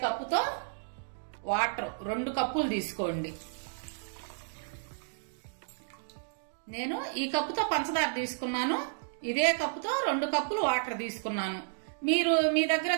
కప్పుతో వాటర్ 2 కప్పులు తీసుకోండి. నేను ఈ కప్పుతో పంచదార తీసుకున్నాను. ఇదే కప్పుతో 2 కప్పులు వాటర్ తీసుకున్నాను. మీరు మీ దగ్గర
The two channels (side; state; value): left; silent; digital silence